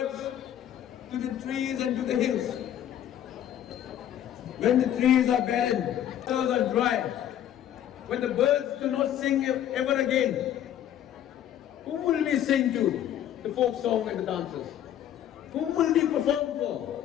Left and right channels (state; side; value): quieter; right; 10.9 dB